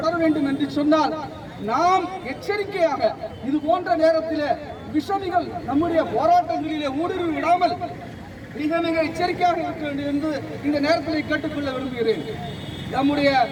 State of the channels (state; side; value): identical; both; correlation 1.00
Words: வேண்டும் என்று சொன்னால் நாம் எச்சரிக்கையாக இது போன்ற நேரத்தில் விஷமிகள் நம்முடைய போராட்டங்களிலே ஊடுருவி விடாமல் மிக மிக எச்சரிக்கையாக இருக்க வேண்டும் என்று இந்த நேரத்தில் கேட்டுக்கொள்ள விரும்புகிறேன். நம்முடைய